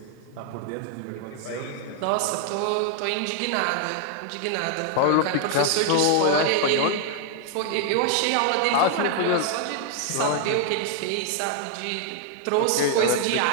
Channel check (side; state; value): both; different; correlation 0.00